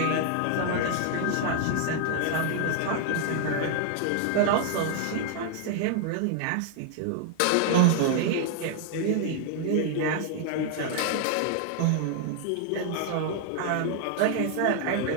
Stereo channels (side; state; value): both; different; correlation 0.00